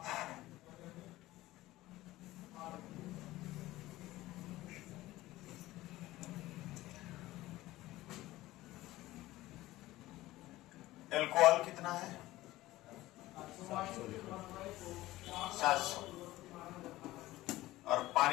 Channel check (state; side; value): quieter; right; 17.2 dB